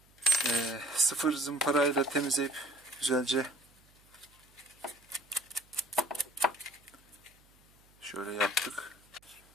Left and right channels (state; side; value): noise; right; hum, 30 dB below the sound